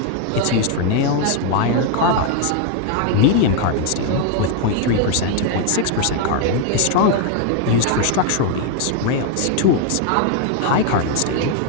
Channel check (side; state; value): both; different; correlation 0.00